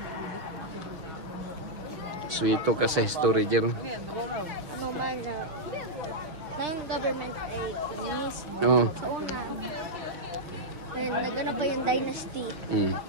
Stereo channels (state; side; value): late; left; 6.3 ms